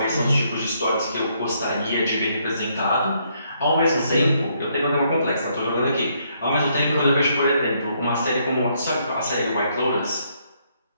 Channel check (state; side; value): inverted; both; correlation -0.72